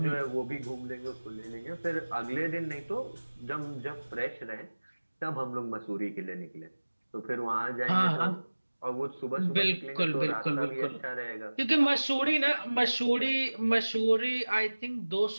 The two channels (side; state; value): both; inverted; correlation -1.00